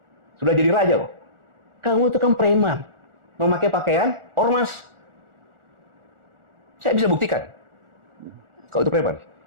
Sudah jadi raja kok. Kamu itu kan preman, memakai pakaian ormas. Saya bisa buktikan. Kau itu preman.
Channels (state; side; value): late; left; 1.4 ms